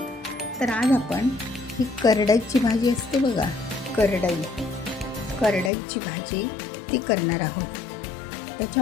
तर आज आपण ही करडईची भाजी असते बघा, करडईची भाजी ती करणार आहोत.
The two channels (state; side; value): drops out; right; at 5.7 s